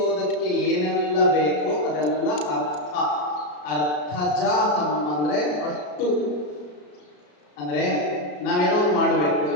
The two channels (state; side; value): late; right; 34 ms